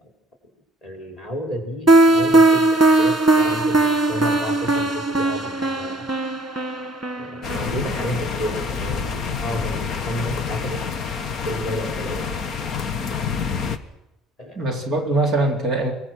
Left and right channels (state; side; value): normal; both; correlation 0.58